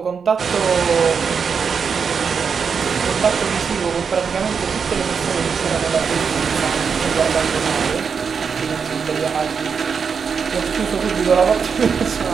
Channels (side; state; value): left; quieter; 6.1 dB